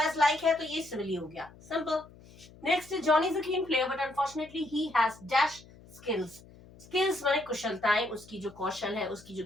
लाइक है तो ये सिमिली हो गया, simple. Next, Johnny is a keen player but unfortunately he has dash skills. Skills माने कुशलताएं, उसकी जो कौशल है, उसकी जो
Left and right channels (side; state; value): left; noise; hum, 22 dB below the sound